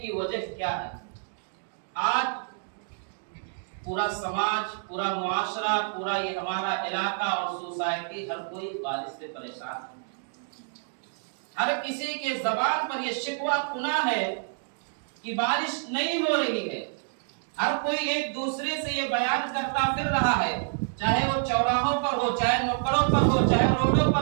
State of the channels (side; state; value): left; silent; digital silence